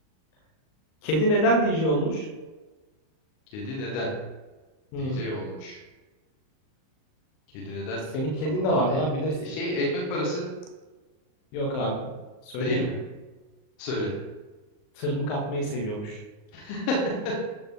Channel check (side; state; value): right; late; 38 ms